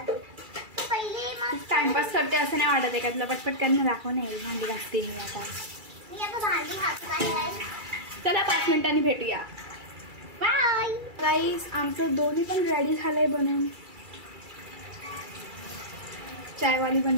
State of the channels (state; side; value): late; left; 2.3 ms